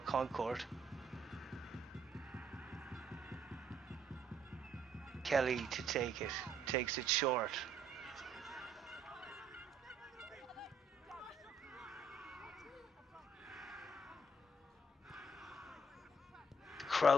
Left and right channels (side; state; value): both; normal; correlation 0.67